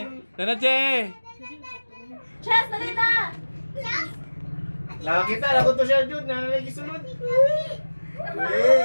Nana Jay. Chess, dali na! Nakakita, lagot to siya dyan, nanalagi sunod.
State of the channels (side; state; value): both; inverted; correlation -1.00